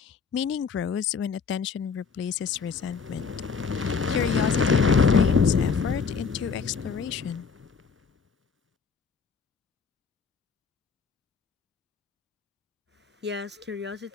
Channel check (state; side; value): quieter; right; 5.6 dB